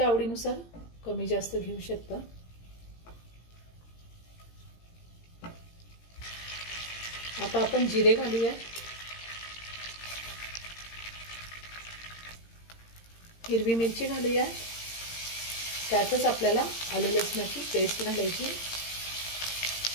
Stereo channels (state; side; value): late; right; 17 ms